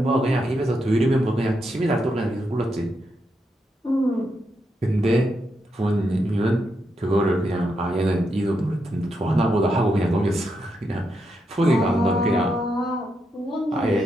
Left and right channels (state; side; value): normal; both; correlation 0.82